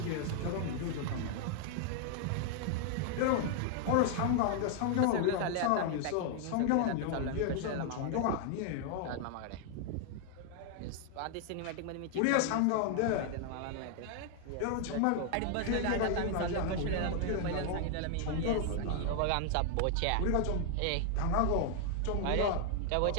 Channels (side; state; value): both; different; correlation 0.00